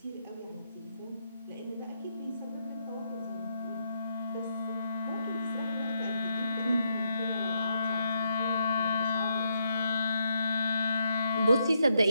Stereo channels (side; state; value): both; inverted; correlation -0.77